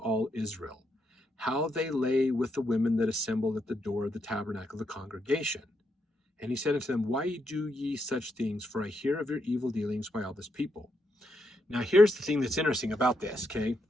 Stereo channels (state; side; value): normal; both; correlation 0.80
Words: Israel, how they lay with the women that assembled at the door of the tabernacle of the congregation. And he said unto them, why do ye such things? For I hear of your evil dealings by all this people. Now here's the thing that's interesting about this, okay?